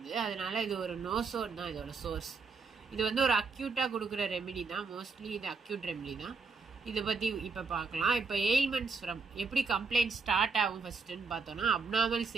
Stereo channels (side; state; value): left; quieter; 4.6 dB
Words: அதனால இது ஒரு நோசோட் தான் இதோட சோர்ஸ். இது வந்து ஒரு அக்யூட்டாக கொடுக்குற ரெமிடி தான். மோஸ்ட்லி இது அக்யூட் ரெமிடி தான். இதை பற்றி இப்போ பார்க்கலாம். இப்போ எயில்மெண்ட்ஸ் ஃப்ரம் எப்படி கம்ப்ளைண்ட் ஸ்டார்ட் ஆகும் ஃபஸ்ட்டுன்னு பார்த்தோன்னா, அப்நார்மல்